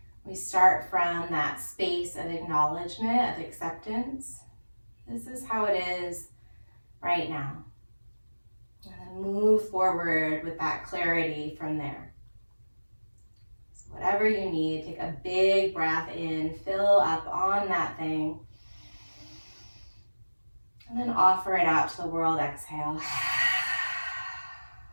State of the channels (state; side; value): inverted; both; correlation -1.00